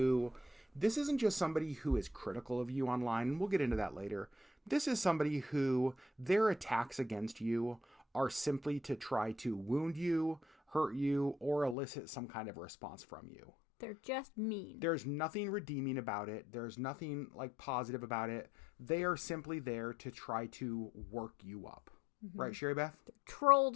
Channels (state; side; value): drops out; right; at 11.8 s